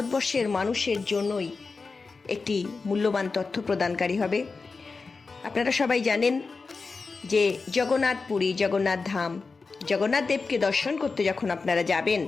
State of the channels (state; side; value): quieter; right; 4.3 dB